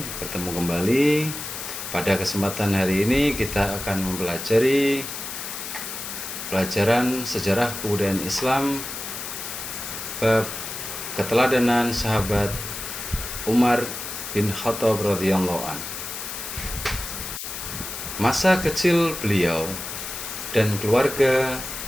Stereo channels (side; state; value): left; noise; hiss, 7 dB below the sound